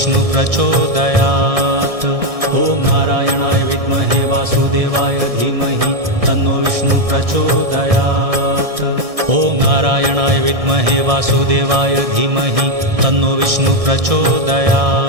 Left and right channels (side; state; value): left; late; 1.6 ms